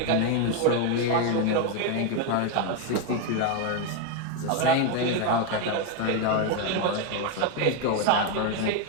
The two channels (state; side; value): different; both; correlation 0.02